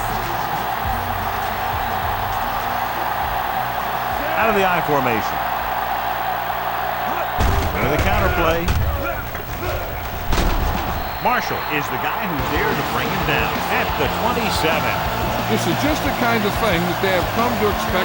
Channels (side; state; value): both; identical; correlation 1.00